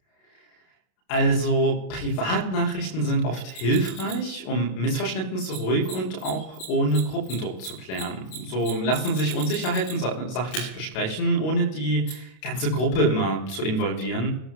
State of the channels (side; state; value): right; late; 32 ms